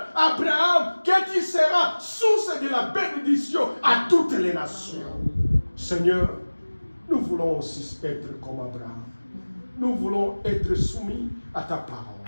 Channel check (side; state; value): both; inverted; correlation -1.00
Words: Abraham, que tu seras source de la bénédiction à toutes les nations. Seigneur, nous voulons aussi être comme Abraham. Nous voulons être soumis à ta parole.